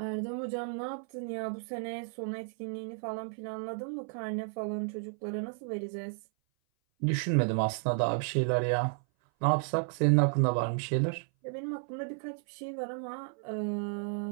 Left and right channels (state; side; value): silent; left; 56 dB below the other